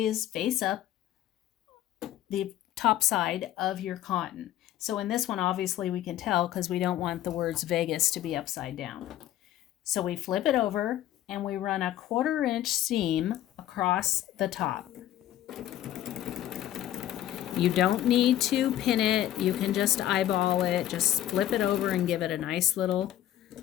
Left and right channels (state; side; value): quieter; right; 12.7 dB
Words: is face up the top side of your cotton. So in this one, obviously we can tell because we don't want the words Vegas to be upside down. So we flip it over and we run a 1/4 inch seam across the top. You don't need to pin it. You can just eyeball it. Just flip it over and give it a nice little